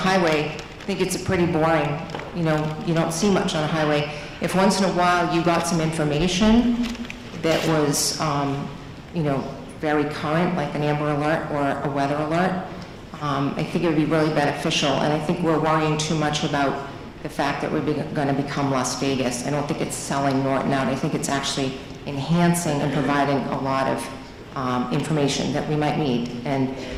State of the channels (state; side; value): identical; both; correlation 1.00